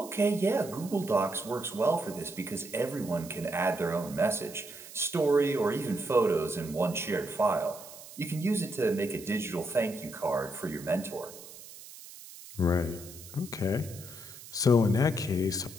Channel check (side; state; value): right; noise; hiss, 16 dB below the sound